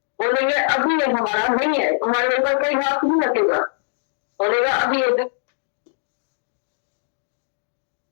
बोलेंगे अभी ये हमारा नहीं है तुम्हारे ऊपर कोई हाथ नहीं रखेगा बोलेगा अभी ये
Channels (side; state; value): right; silent; digital silence